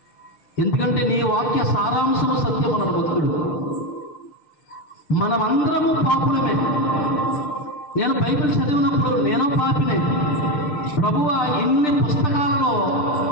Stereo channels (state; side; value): late; right; 6.7 ms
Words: ఎందుకంటే నీ వాక్య సారాంశం సత్యం అన్నాడు భక్తుడు. మనమందరము పాపులమే. నేను బైబిల్ చదివినప్పుడు నేను పాపినే. ప్రభువా, ఇన్ని పుస్తకాలలో